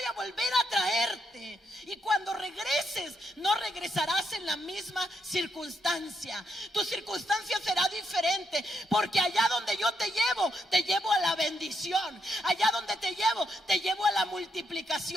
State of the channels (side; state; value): both; normal; correlation 0.79